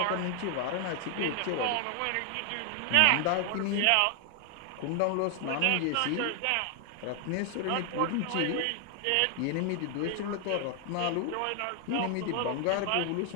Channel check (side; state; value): both; different; correlation 0.00